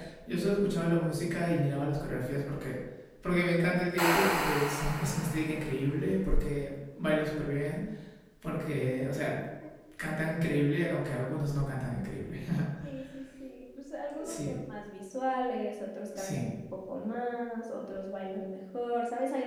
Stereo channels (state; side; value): identical; both; correlation 1.00